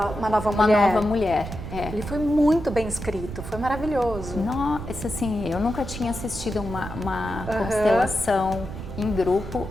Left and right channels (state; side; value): noise; right; rumble, 9 dB below the sound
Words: Uma Nova Uma Mulher. Nova Mulher. É. Ele foi muito bem escrito, foi maravilhoso. Nossa, assim, eu nunca tinha assistido uma constelação em grupo